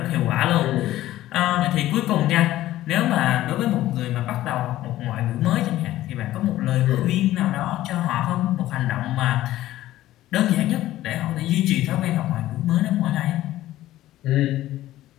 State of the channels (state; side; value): quieter; right; 14.8 dB